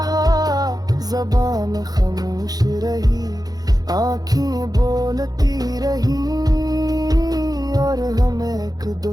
ज़बान खामोश रही, आँखें बोलती रही, और हम एक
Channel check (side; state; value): left; late; 0.19 ms